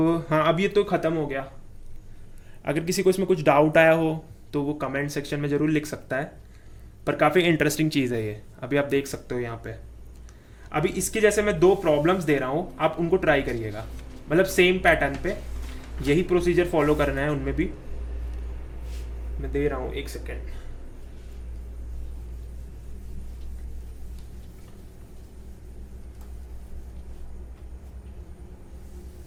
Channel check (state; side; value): identical; both; correlation 1.00